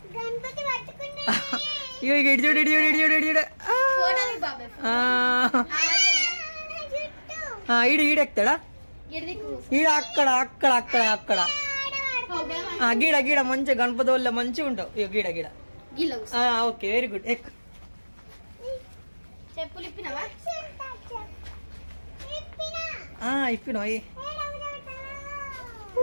ఇడిచూడు ఇడిచూడు ఇడిచూడు ఇడిచూడు. ఈడెక్తాడా? ఈడ అక్కడ అక్కడ అక్కడ అక్కడ గీడ గీడ మంచిగా గణపతి వల్ల మంచిగా ఉంటావు. గీడ గీడ. Okay very good. ఎక్ ఇప్పినా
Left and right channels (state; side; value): inverted; both; correlation -1.00